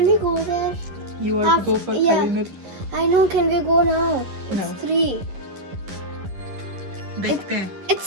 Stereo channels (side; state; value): left; late; 11 ms